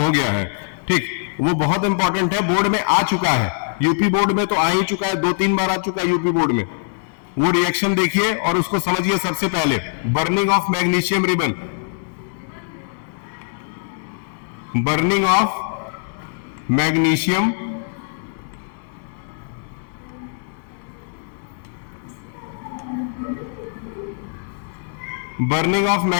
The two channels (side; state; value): right; silent; digital silence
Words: हो गया है। ठीक, वो बहुत इंपॉर्टेंट है, बोर्ड में आ चुका है। यूपी बोर्ड में तो आ ही चुका है, 2-3 बार आ चुका है यूपी बोर्ड में। वो रिएक्शन देखिए और उसको समझिए। सबसे पहले burning of magnesium ribbon, burning of magnesium